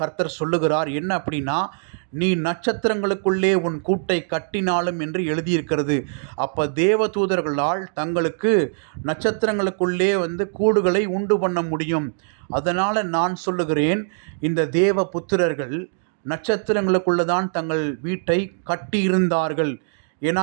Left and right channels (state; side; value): silent; left; digital silence